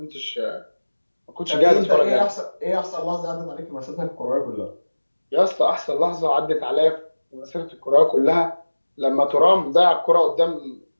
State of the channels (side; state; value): both; inverted; correlation -1.00